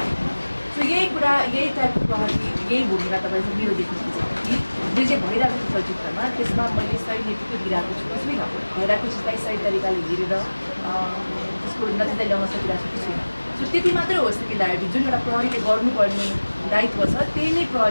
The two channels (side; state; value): both; inverted; correlation -1.00